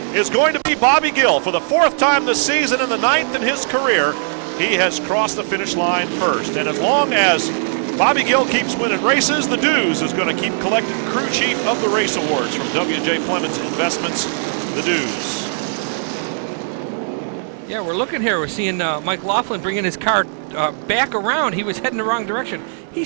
is going to be Bobby Gill for the 4th time this season and the 9th in his career. He has crossed the finish line first, and as long as Bobby Gill keeps winning races, the Dues is going to keep collecting crew chief of the race awards from W.J. Fleming's Investments, the Dues. Yeah, we're looking here. We're seeing Mike Laughlin bringing his car back around. He was heading the wrong direction. He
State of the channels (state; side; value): silent; left; digital silence